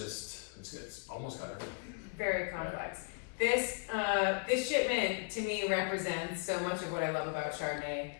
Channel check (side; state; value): right; quieter; 38.6 dB